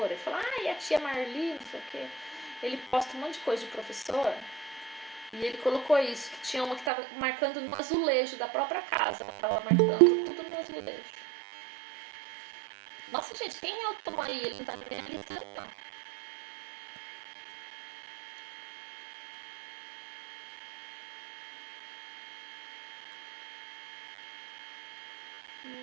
e fala, e a tia Marli, não sei o quê. Ele posta um monte de coisa de professor e ele colocou isso, que tinha uma que estava marcando no azulejo da própria casa. Ela estava marcando tudo no azulejo. Nossa, gente, quem é o Tom aí? Ele não tá bem ali, não.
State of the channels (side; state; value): left; drops out; at 6.9 s